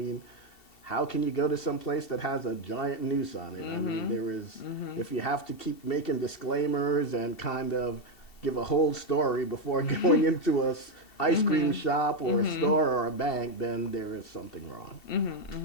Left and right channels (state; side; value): late; right; 2.7 ms